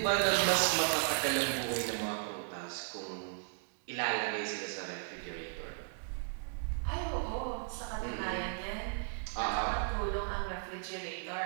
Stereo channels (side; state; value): left; silent; digital silence